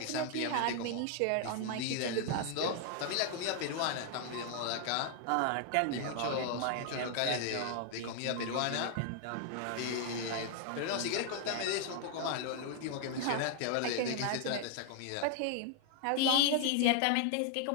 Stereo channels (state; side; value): different; both; correlation 0.00